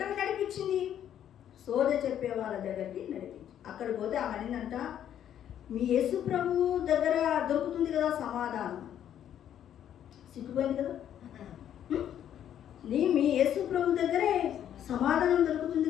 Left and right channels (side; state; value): right; quieter; 10.2 dB